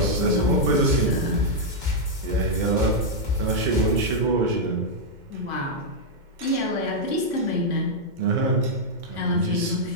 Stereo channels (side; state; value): left; late; 2.1 ms